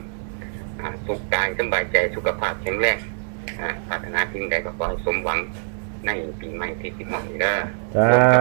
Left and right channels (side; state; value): left; silent; digital silence